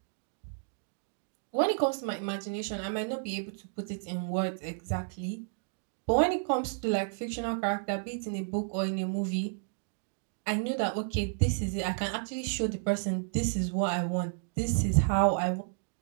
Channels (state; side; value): silent; left; digital silence